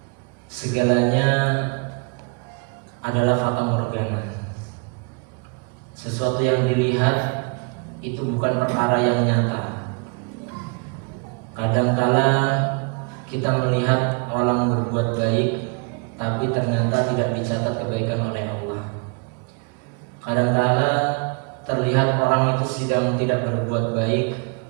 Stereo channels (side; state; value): left; quieter; 34.9 dB